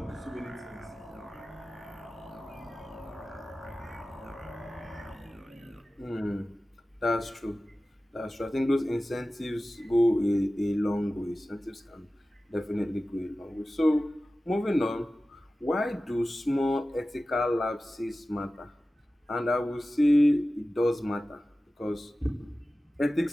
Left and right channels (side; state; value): both; normal; correlation 0.95